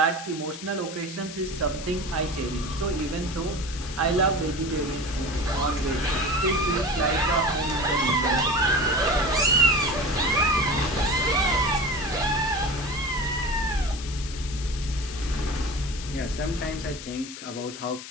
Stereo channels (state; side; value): noise; left; hiss, 12 dB below the sound